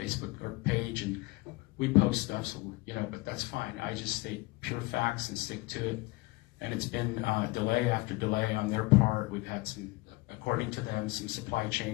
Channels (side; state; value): right; quieter; 23.1 dB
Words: page, and we post stuff, so, but that's fine. I just state pure facts and stick to it. And it's been delay after delay on their part. We've had some, according to them, some supply